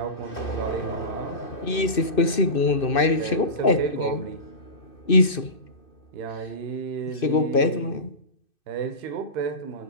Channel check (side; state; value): right; late; 2.6 ms